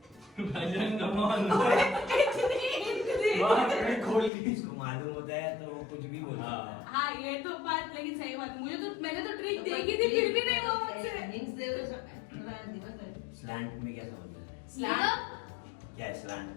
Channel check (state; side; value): drops out; right; at 4.3 s